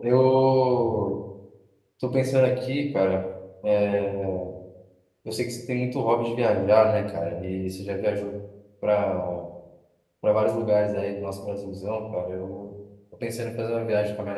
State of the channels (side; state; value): both; identical; correlation 1.00